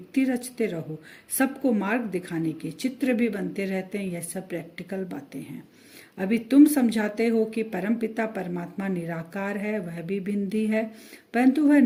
रचते रहो। सबको मार्ग दिखाने के चित्र भी बनते रहते हैं। यह सब प्रैक्टिकल बातें हैं। अभी तुम समझाते हो कि परमपिता परमात्मा निराकार है, वह भी बिंदी है, परंतु वह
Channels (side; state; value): both; identical; correlation 1.00